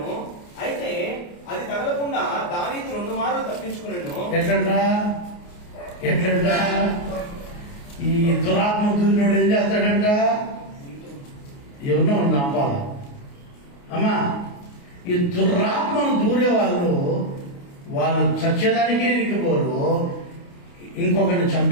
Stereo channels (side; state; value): right; late; 29 ms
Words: అయితే అది తగలకుండా దావీదు 2 మార్లు తప్పించుకున్నాను. ఎట్లంట ఈ దురాత్మ దూరినోడు ఏం చేస్తాడంట? ఎవరినో నమ్మాల అమ్మా. ఈ దురాత్మను దూరే వాళ్ళు చచ్చేదానికి ఎనికిపోరు, ఇంకొకరిని